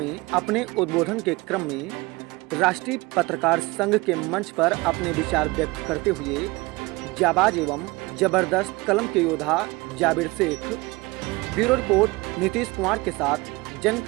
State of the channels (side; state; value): left; quieter; 23.0 dB